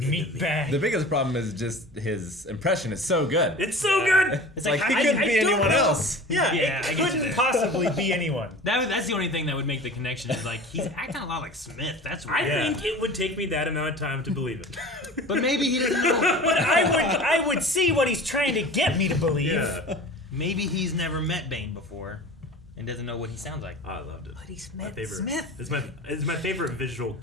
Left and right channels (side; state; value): both; normal; correlation 0.38